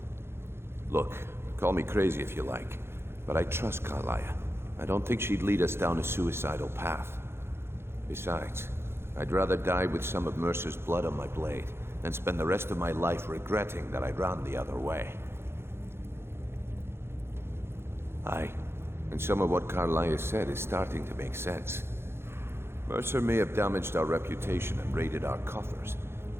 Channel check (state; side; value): late; left; 0.12 ms